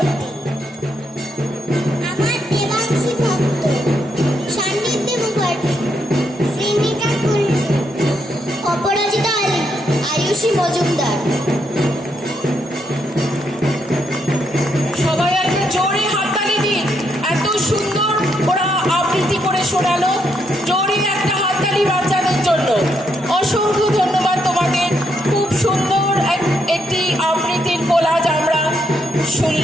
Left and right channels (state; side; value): normal; both; correlation 0.78